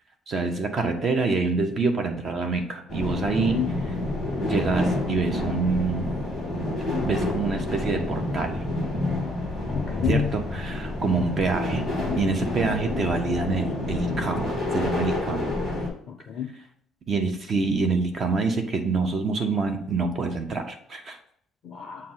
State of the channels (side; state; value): both; normal; correlation 0.65